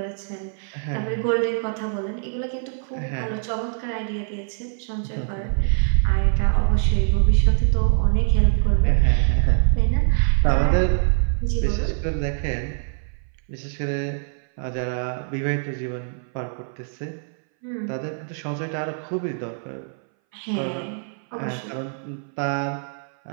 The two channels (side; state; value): left; silent; 60 dB below the other